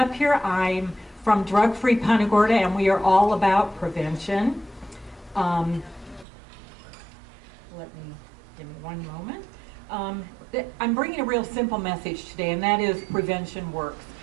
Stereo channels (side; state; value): left; drops out; at 6.2 s